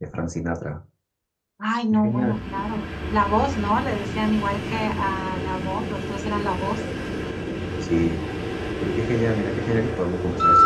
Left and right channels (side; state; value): both; identical; correlation 1.00